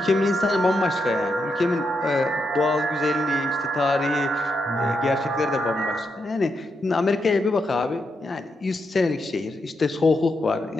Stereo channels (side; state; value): both; normal; correlation 0.83